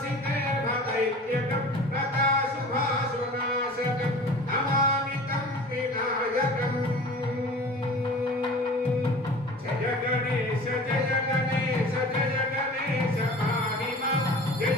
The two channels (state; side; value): normal; both; correlation 0.40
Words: భదైత్యకం ప్రతాశుభాశునాశకం నమామితం వినాయకం. జయ గణేశ జయ గణేశ జయ గణేశ పాహిమా